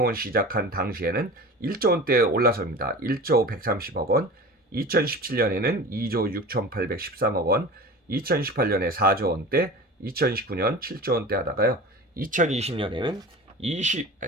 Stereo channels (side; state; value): both; normal; correlation 0.35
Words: 시작한 당시에는 1조 원대에 올라섭니다. 1조 130억 원, 2017년에는 2조 6,813억 원, 2018년에 4조 원대, 2019년 7조 원대 하다가요. 2020년에는